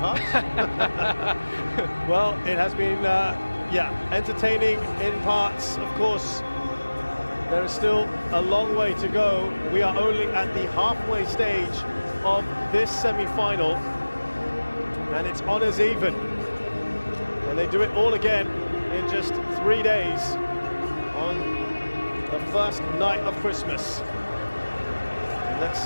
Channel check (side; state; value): both; inverted; correlation -1.00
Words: Well, it has been, entertaining in parts. Of course, there is still a long way to go. We are only at the halfway stage of this semi-final, and it's honours even. And they do it all again in just 3 days on the first night of Christmas. And let's